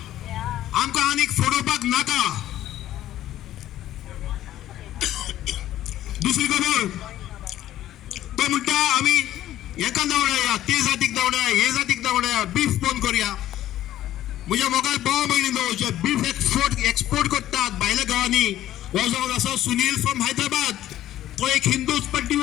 आनीक फोडोवपाक नाका. दुसरी खबर तो म्हणटा आमी हेका धांवडाया ते जातीक धांवडाया हे जातीक धांवडाया बीफ बंद करूया. म्हज्या मोगाल भाव भयणीनो जे बीफ एक्सपोर्ट करतात भायल्या गांवांनी हो जावन आसा सुनील फ्रॉम हैदराबाद. तो एक हिंदूच पण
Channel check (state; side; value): quieter; right; 13.2 dB